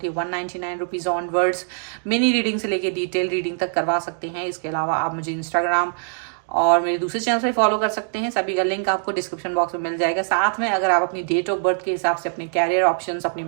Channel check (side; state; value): left; silent; digital silence